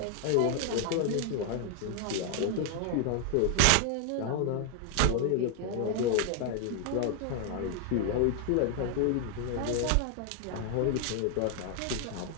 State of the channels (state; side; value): different; both; correlation 0.00